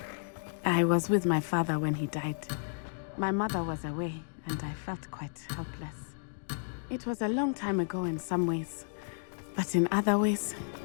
I was with my father when he died. My mother was away, and I felt quite helpless. It was a long time ago in some ways, but in other ways,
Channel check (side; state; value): right; silent; digital silence